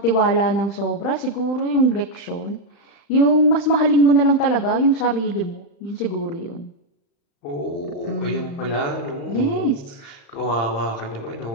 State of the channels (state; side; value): late; right; 35 ms